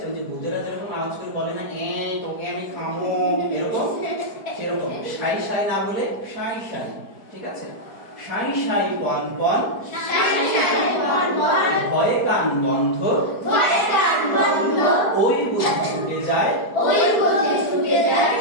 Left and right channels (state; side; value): late; right; 4.6 ms